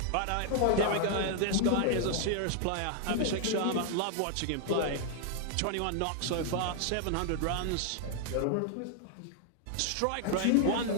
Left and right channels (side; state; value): both; different; correlation 0.00